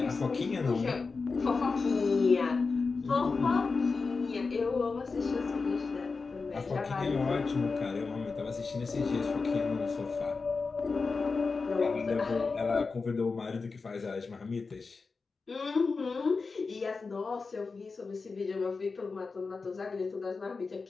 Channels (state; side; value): quieter; right; 4.4 dB